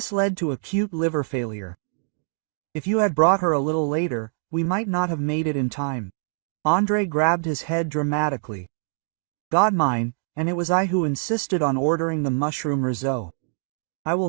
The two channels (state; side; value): silent; left; digital silence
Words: led to acute liver failure. If you had brought her a little later, we might not have made it in time. Andrei grabbed his head dramatically. "God mine, and it was I who insisted on ordering the mushroom risotto. I